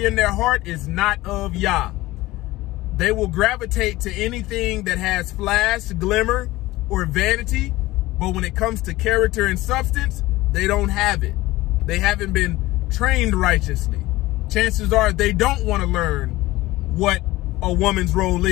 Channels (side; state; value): right; quieter; 18.4 dB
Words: in their heart, is not of YAH. They will gravitate to anything that has flash, glimmer, or vanity, but when it comes to character and substance, they don't have it. They haven't been trained righteously. Chances are they don't want to learn what a woman's role